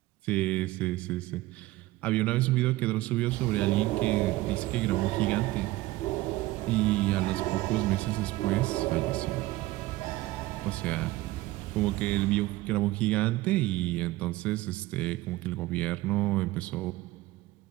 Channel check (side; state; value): left; quieter; 18.0 dB